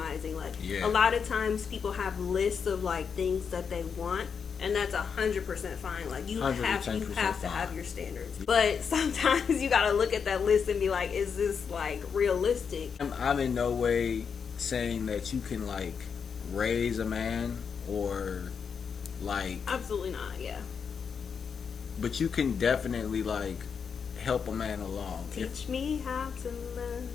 Like, a lot of times people have lists of, like, things that they want, and that's 100% fine. Like, you have to have your standards. But sometimes you gotta look at that list and be like, is this, like, realistic? I'm in no way saying that you can, like, raise a man or, like... Absolutely not, yeah. But you can definitely, like, help a man along. Teach me how to love.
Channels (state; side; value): quieter; right; 6.4 dB